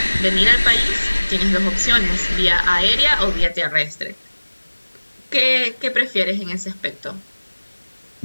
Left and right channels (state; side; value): inverted; both; correlation -1.00